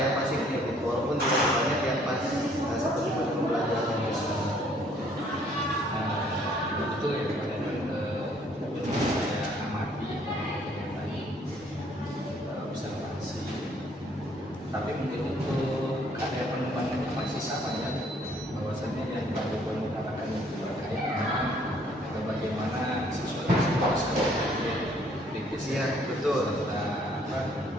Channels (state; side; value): normal; both; correlation 0.62